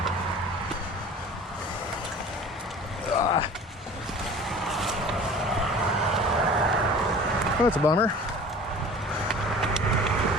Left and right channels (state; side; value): normal; both; correlation 0.43